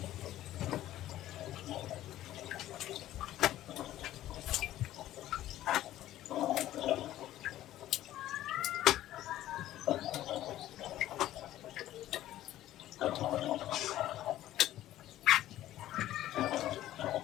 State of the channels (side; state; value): right; quieter; 13.8 dB